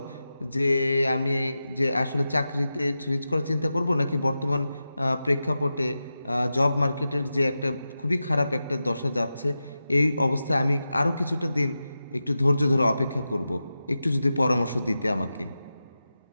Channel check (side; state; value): both; inverted; correlation -0.91